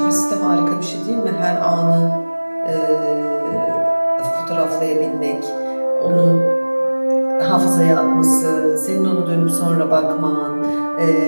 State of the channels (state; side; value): inverted; both; correlation -1.00